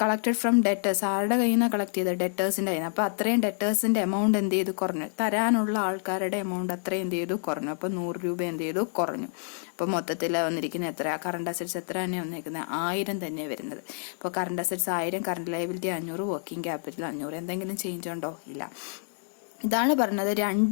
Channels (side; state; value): right; silent; 59 dB below the other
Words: കളക്ടഡ് ഫ്രം ഡെറ്റേഴ്സ്, ആരുടെ കയ്യിൽ നിന്നാണ് കളക്ട് ചെയ്തത്, ഡെറ്റേഴ്സിന്റെ കയ്യിൽ നിന്ന്. അപ്പൊ അത്രയും ഡെറ്റേഴ്സിന്റെ എമൗണ്ട് എന്ത് ചെയ്തു, കുറഞ്ഞു. തരാനുള്ള ആൾക്കാരുടെ എമൗണ്ട് അത്രയും എന്ത് ചെയ്തു, കുറഞ്ഞു. അപ്പൊ 100 രൂപ എന്ത് ചെയ്തു, കുറഞ്ഞു. അപ്പൊ മൊത്തത്തിൽ വന്നിരിക്കുന്ന എത്ര, കറണ്ട് അസറ്റ്സ് എത്ര തന്നെയാണ് വന്നിരിക്കുന്നത്, 1000 തന്നെയാണ് വരുന്നത്. അപ്പോൾ current assets 1000, current liability 500, working capital 500. എന്തെങ്കിലും ചേഞ്ച് ഉണ്ടോ, ഇല്ല. ഇതാണ് പറഞ്ഞത്,